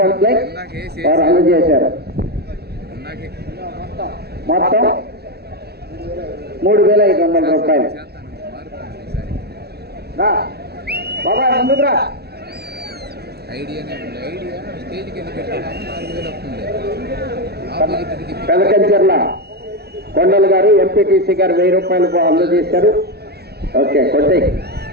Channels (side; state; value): left; late; 0.47 ms